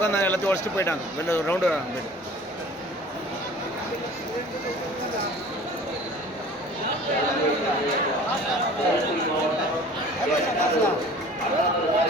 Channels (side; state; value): both; normal; correlation 0.45